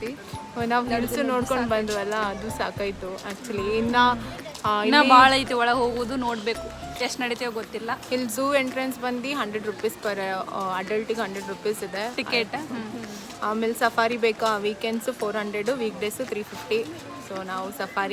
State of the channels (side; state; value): both; identical; correlation 1.00